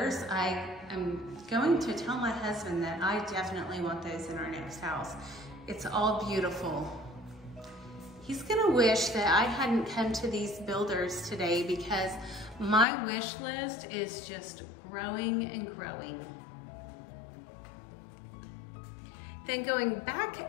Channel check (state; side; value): drops out; right; at 12.9 s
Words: I am going to tell my husband that I definitely want those in our next house. It's all beautiful. He's gonna wish that I hadn't come to these builders today because my wish list is just growing and growing. Then going